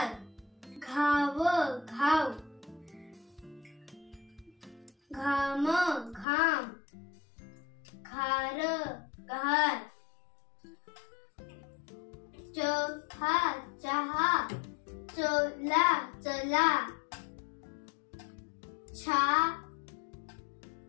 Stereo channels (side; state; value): right; drops out; at 6.2 s